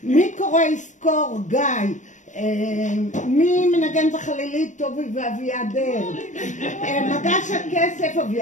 מי קורא יזכור גיא? מי מנגן בחלילית טובי ואביעדר? מגש הכסף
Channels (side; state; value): right; late; 0.35 ms